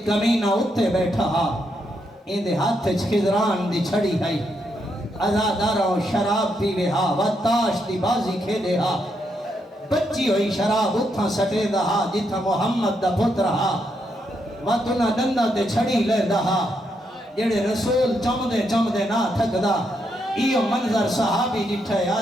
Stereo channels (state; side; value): normal; both; correlation 0.79